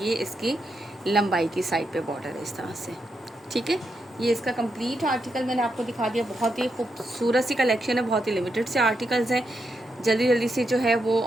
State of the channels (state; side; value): normal; both; correlation 0.83